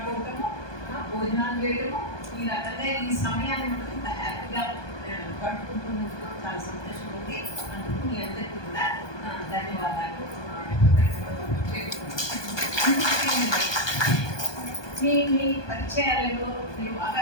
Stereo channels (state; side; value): late; right; 1.2 ms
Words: భోజనాలు చేయడము, ఈ రకంగా ఈ సమయాన్ని మనం ఇంత హ్యాపీగా గడుపుకుంటున్నందుకు చాలా సంతోషం ఉంది. అందుకు మీ అందరికీ కూడా ధన్యవాదాలు. మీ పరిచయాలలో మీరు